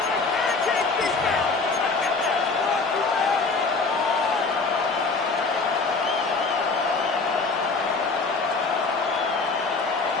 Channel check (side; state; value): right; quieter; 4.0 dB